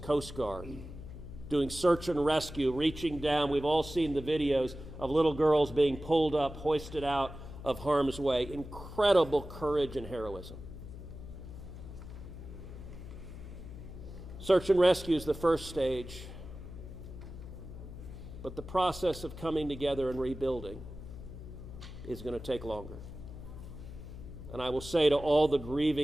Coast Guard, doing search and rescue, reaching down. We've all seen the videos of little girls being pulled up, hoisted out of harm's way. Incredible courage and heroism. Search and rescue is the first stage. But the process of coming together and rebuilding is going to take longer. And I will say to all the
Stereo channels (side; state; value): left; noise; hum, 12 dB below the sound